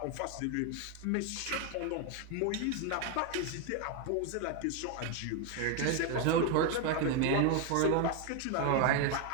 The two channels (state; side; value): different; both; correlation 0.01